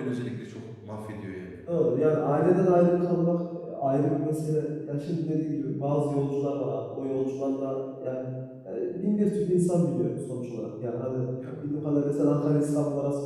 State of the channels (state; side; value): identical; both; correlation 1.00